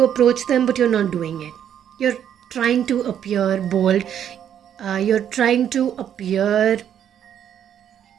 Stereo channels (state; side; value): quieter; left; 9.5 dB